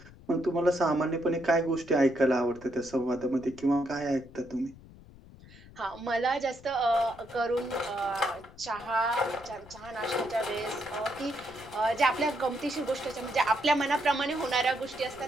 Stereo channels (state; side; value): noise; left; rumble, 20 dB below the sound